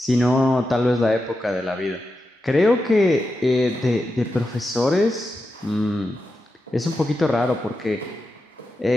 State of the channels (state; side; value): normal; both; correlation 0.89